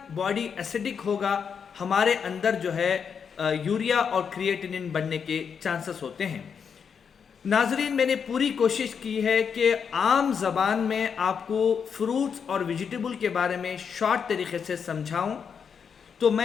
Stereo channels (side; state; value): right; quieter; 6.7 dB